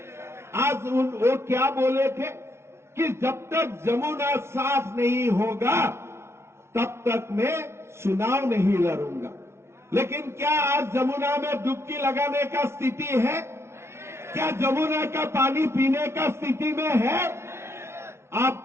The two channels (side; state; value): left; late; 0.13 ms